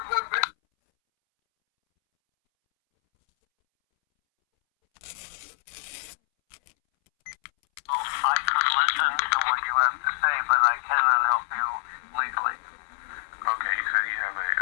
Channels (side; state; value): right; silent; 61 dB below the other